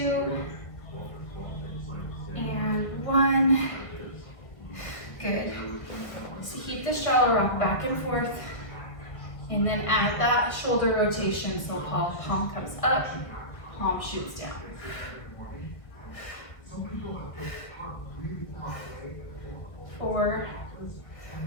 and 1. Good. So keep the straddle rock back and forth, and then add that shoulder rotation. So palm comes up, palm shoots down. 4,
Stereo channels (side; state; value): right; late; 1.5 ms